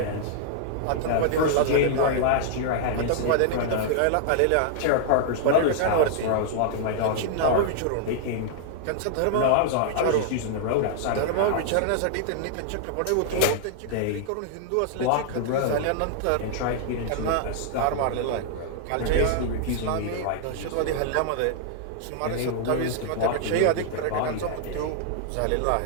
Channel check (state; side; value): different; both; correlation -0.01